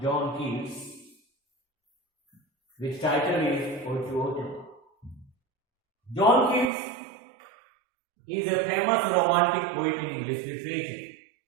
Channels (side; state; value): left; drops out; at 6.7 s